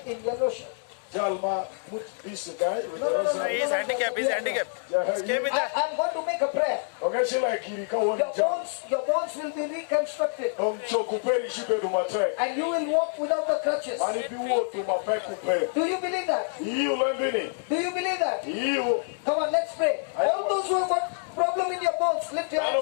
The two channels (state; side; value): silent; right; 60 dB below the other